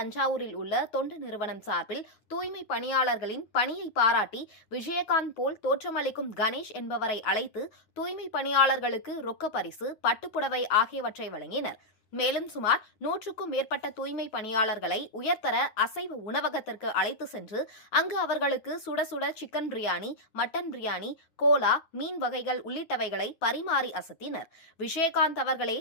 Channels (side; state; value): right; late; 9.1 ms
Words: உள்ள தொண்டு நிறுவனம் சார்பில் தூய்மை பணியாளர்களின் பணியை பாராட்டி விஜயகாந்த் போல் தோற்றமளிக்கும் கணேஷ் என்பவரை அழைத்து தூய்மை பணியாளர்களுக்கு ரொக்க பரிசு, பட்டுப்புடவை ஆகியவற்றை வழங்கினர். மேலும் சுமார் 100க்கும் மேற்பட்ட தூய்மை பணியாளர்களை உயர்தர அசைவ உணவகத்திற்கு அழைத்து சென்று அங்கு அவர்களுக்கு சுட சுட சிக்கன் பிரியாணி, மட்டன் பிரியாணி, கோலா, மீன் வகைகள் உள்ளிட்டவைகளை பரிமாறி அசத்தினர். விஜயகாந்த் அவர்களே